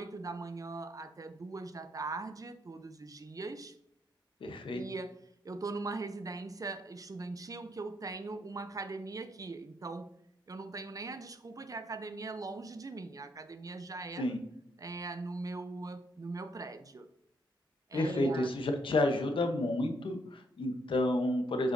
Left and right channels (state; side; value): normal; both; correlation 0.73